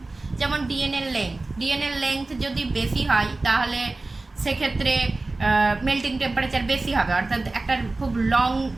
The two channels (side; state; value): left; quieter; 3.2 dB